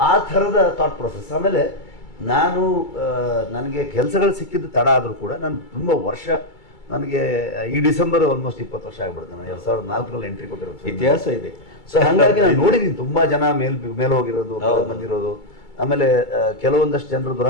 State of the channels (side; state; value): right; late; 2.3 ms